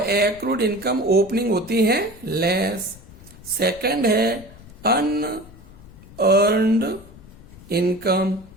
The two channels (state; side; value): noise; left; rumble, 20 dB below the sound